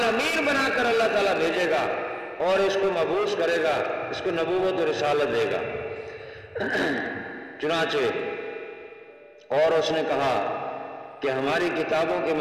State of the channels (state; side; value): identical; both; correlation 1.00